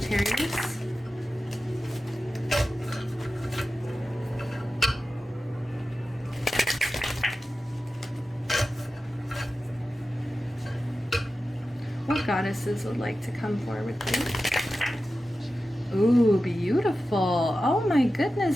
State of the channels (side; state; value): both; normal; correlation 0.93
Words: What goddesses would like to come forward, please? Ooh, beautiful. Oh my